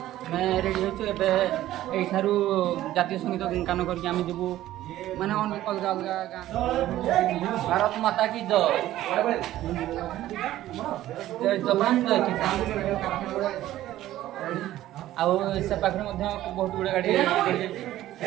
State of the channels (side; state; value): left; quieter; 14.1 dB